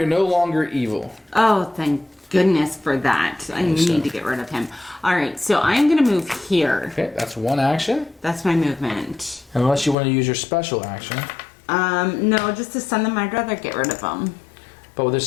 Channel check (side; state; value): right; drops out; at 10.0 s